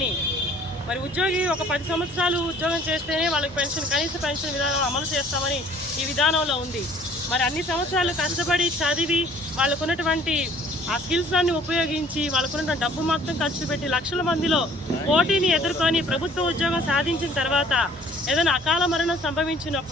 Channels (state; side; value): normal; both; correlation 0.55